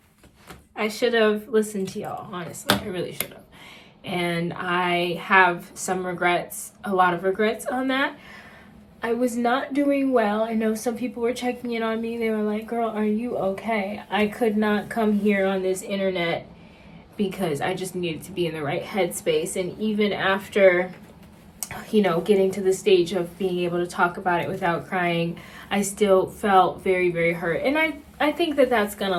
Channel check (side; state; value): both; identical; correlation 1.00